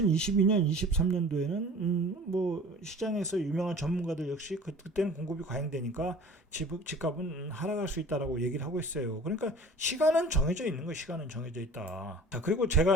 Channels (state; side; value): normal; both; correlation 0.43